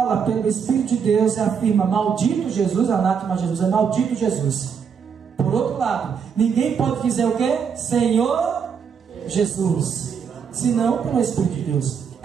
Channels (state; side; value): quieter; left; 6.8 dB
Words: pelo Espírito de Deus e afirma maldito Jesus, anátema Jesus, é maldito Jesus. Por outro lado, ninguém pode dizer o que? Senhor Jesus, senão pelo Espírito de Deus.